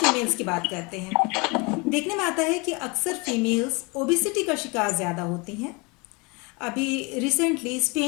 की बात करते हैं। देखने में आता है कि अक्सर फीमेल्स ओबिसिटी का शिकार ज़्यादा होती हैं। अभी रिसेंटली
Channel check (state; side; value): quieter; right; 28.2 dB